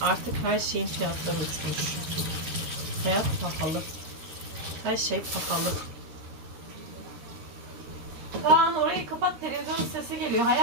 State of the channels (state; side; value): late; left; 13 ms